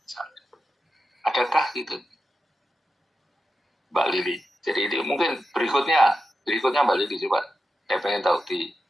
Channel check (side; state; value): both; normal; correlation 0.89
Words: misalnya. Adakah gitu, Mbak Lili? Jadi ini mungkin berikutnya Mbak Lili coba, saya pengen tahu di